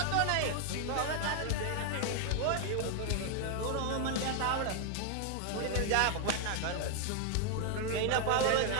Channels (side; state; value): both; different; correlation 0.00